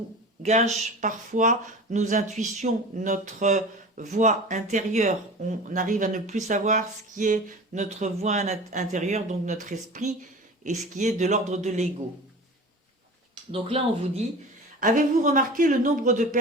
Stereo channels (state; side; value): normal; both; correlation 0.36